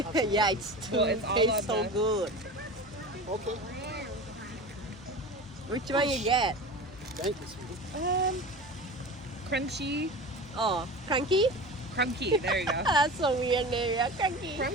Yeah, it's too Well, it's all tastes on so the- good. Okay. Which one you get? Thank you, sweetie. Crunchy. Oh, cranky? Crunky. There you go. That's a weird name. Yeah, cranky.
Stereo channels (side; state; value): both; normal; correlation 0.32